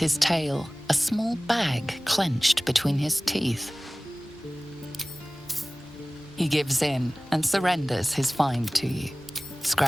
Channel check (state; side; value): normal; both; correlation 0.98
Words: tail, a small bag clenched between his teeth. He gives in and surrenders his find to you.